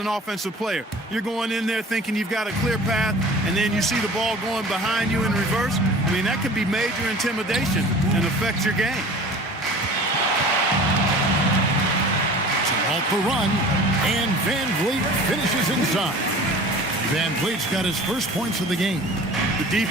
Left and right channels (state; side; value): normal; both; correlation 0.42